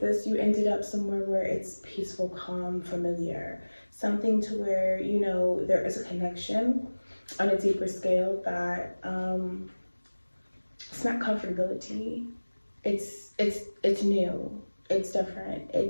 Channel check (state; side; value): inverted; both; correlation -1.00